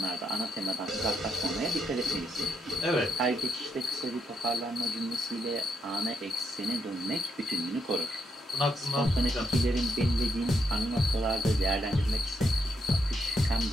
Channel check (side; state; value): both; normal; correlation 0.78